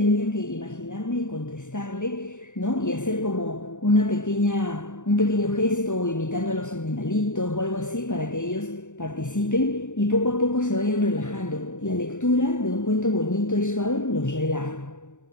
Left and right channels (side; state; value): right; late; 0.85 ms